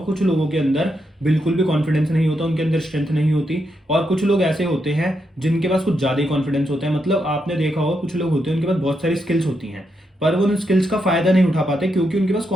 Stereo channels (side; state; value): both; normal; correlation 0.82